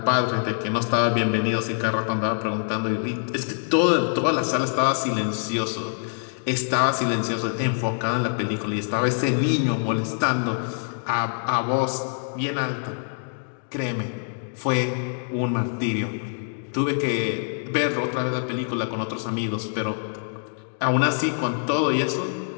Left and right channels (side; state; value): right; silent; digital silence